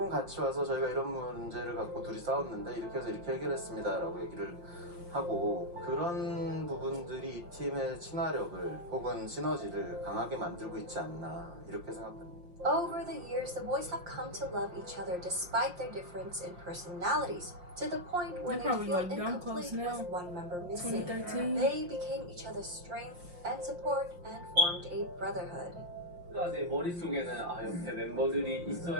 같이 와서 저희가 이런 문제를 갖고 둘이 싸웠는데 이렇게 해서 이렇게 해결했습니다 라고 얘기를 하고, 그런 부분들이 이 팀의 친화력을 혹은 시너지를 강하게 만들고 있지 않나 이렇게 생각합니다. Over the years, the boys have come to love each other despite their difference in personalities, to the point where they feel incomplete with one member missing. They became each other's strength and support and formed a brotherhood. 제 머릿속에는 옆에 멤버들이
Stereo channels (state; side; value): late; left; 5.6 ms